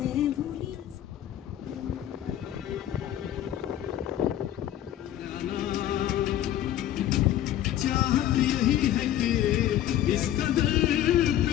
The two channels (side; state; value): right; quieter; 12.1 dB